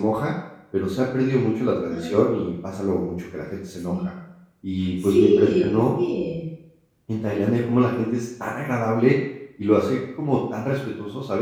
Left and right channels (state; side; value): identical; both; correlation 1.00